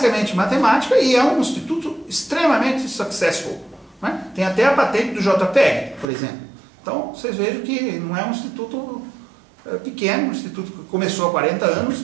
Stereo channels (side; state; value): left; drops out; at 6.1 s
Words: matemática e é um instituto extremamente successful. Né? Tem até a patente do JPEG, por exemplo. Então, vocês vejam que não é um instituto pequeno, um instituto que começou há 40